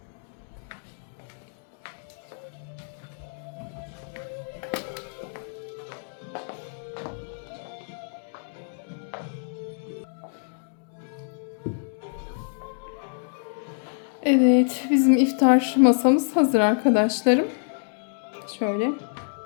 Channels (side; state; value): right; silent; 60 dB below the other